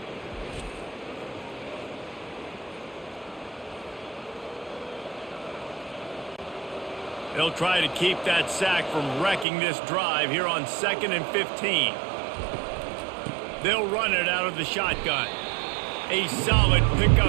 They'll try to keep that sack from wrecking this drive here on 2nd and 15. They'll run it out of the shotgun. A solid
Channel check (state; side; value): drops out; left; at 9.5 s